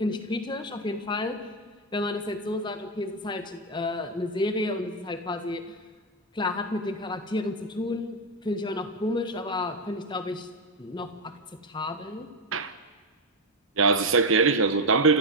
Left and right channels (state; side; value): normal; both; correlation 0.06